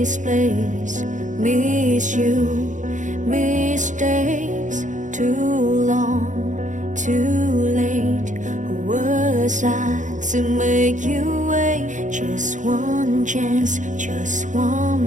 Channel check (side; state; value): left; late; 0.36 ms